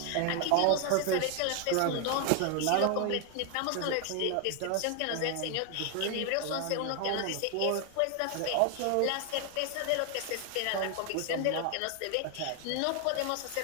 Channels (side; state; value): both; different; correlation 0.00